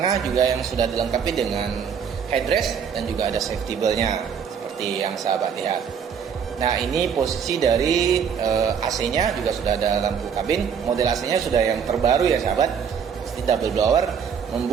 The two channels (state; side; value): quieter; left; 7.1 dB